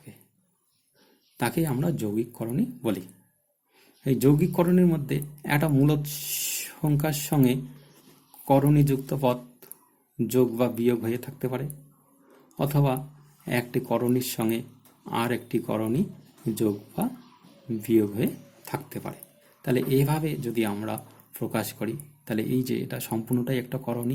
তাকে আমরা যৌগিক করণী বলি। এই যৌগিক করণীর মধ্যে একটা মূলদ সংখ্যার সঙ্গে করণীযুক্ত পদ যোগ বা বিয়োগ হয়ে থাকতে পারে, অথবা একটি করণীর সঙ্গে আর একটি করণী যোগ বা বিয়োগ হয়ে থাকতে পারে। তাহলে এইভাবে যদি আমরা প্রকাশ করি তাহলে এই যে এটা সম্পূর্ণটাই একটা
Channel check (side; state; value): both; identical; correlation 1.00